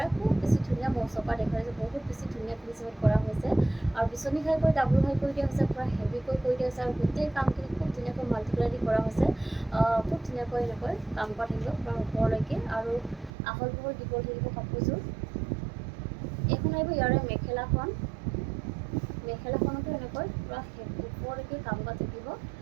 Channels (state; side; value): drops out; left; at 13.3 s